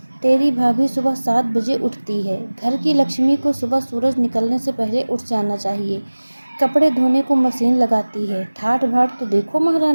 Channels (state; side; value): inverted; both; correlation -1.00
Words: तेरी भाभी सुबह 7 बजे उठती है। घर की लक्ष्मी को सुबह सूरज निकलने से पहले उठ जाना चाहिए। कपड़े धोने को मशीन लगाती है। ठाठ बाट तो देखो